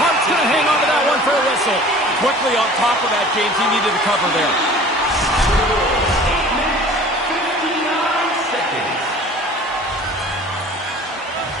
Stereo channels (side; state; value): both; normal; correlation 0.45